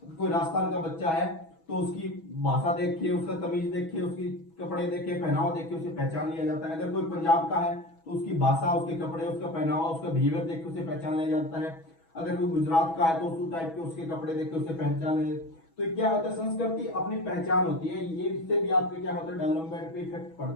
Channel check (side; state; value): right; late; 6.1 ms